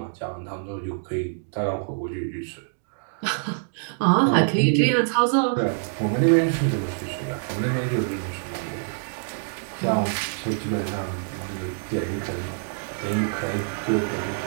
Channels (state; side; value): silent; left; digital silence